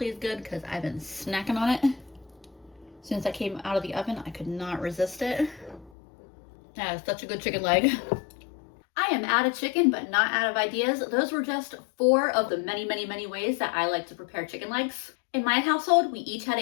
is good because I've been snacking on it. As soon as I came out of the oven, I could not resist it. That is such a good chicken leg. I am out of chicken, but not out of ideas. Those were just 4 of the many, many, many ways that I like to prepare chicken legs. In my household, we each had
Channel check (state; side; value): drops out; right; at 5.9 s